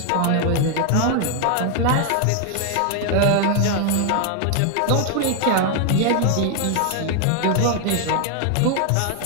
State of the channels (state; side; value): different; both; correlation 0.00